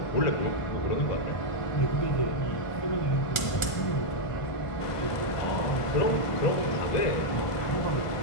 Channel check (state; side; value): late; right; 1.5 ms